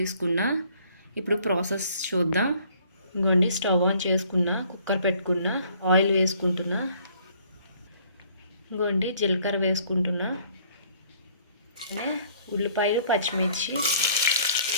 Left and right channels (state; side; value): inverted; both; correlation -0.59